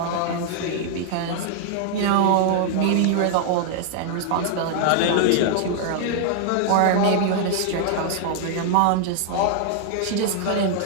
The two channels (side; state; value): both; different; correlation -0.01